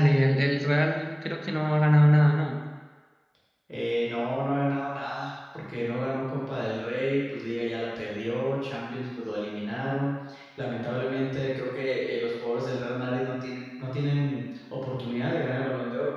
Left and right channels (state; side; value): identical; both; correlation 1.00